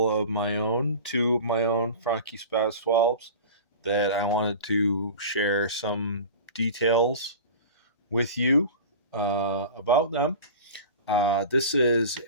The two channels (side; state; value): both; inverted; correlation -0.35